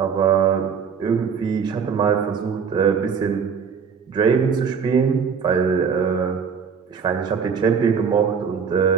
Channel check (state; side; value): quieter; left; 6.4 dB